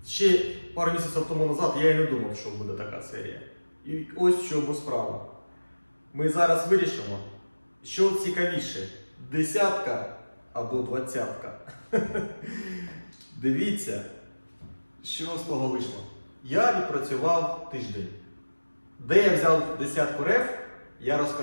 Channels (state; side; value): inverted; both; correlation -1.00